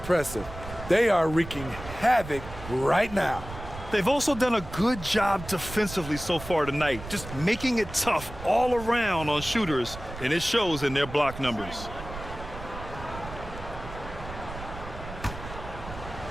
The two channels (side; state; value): right; noise; rumble, 12 dB below the sound